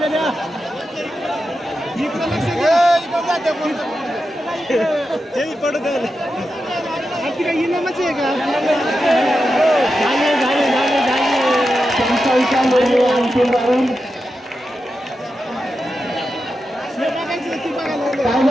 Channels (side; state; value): both; normal; correlation 0.89